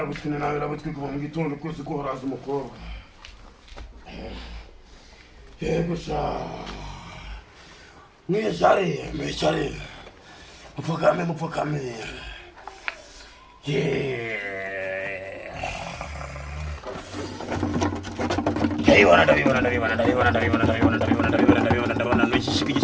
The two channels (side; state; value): both; identical; correlation 1.00